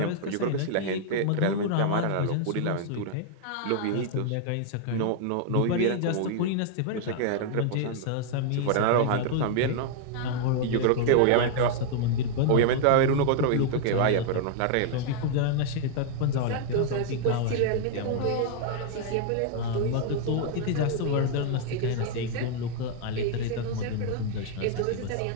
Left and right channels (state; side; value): different; both; correlation 0.00